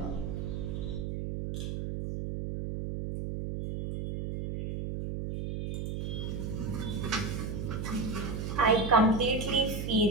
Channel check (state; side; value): noise; right; hum, 4 dB below the sound